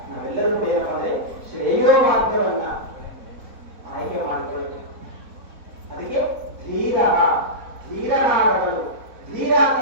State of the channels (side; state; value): left; late; 4.1 ms